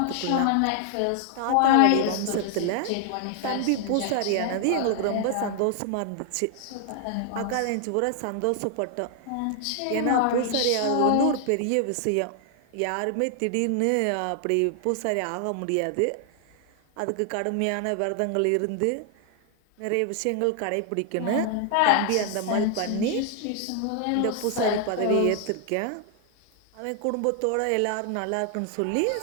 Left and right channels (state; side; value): different; both; correlation 0.00